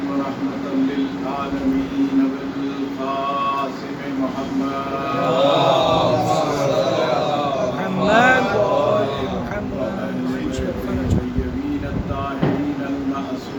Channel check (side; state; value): both; identical; correlation 1.00